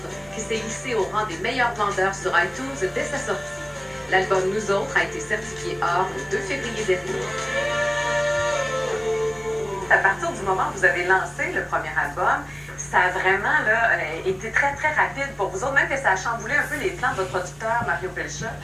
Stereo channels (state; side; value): noise; right; rumble, 28 dB below the sound